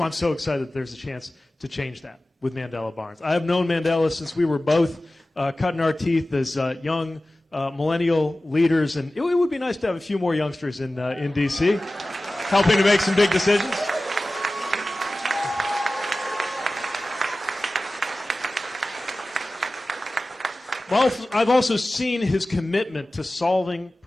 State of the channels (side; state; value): both; normal; correlation 0.96